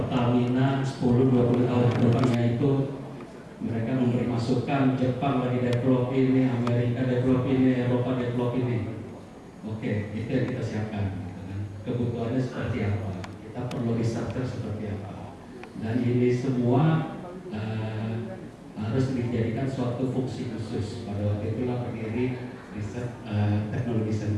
10-20 tahun ke depannya itu mereka memberi masukan, Jepang lagi develop ini, Amerika develop ini, Eropa develop ini. Oke, itu yang kita siapkan. Gitu kan. Kebutuhannya seperti apa? Kita perlu researcher seperti apa? Dan ini semua harus dijadikan suatu fungsi khusus. Pada waktu itulah berdiri riset teknologi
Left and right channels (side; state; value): both; identical; correlation 1.00